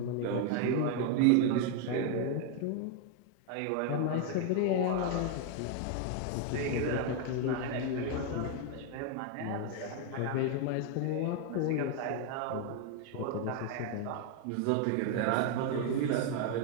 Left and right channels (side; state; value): both; different; correlation 0.01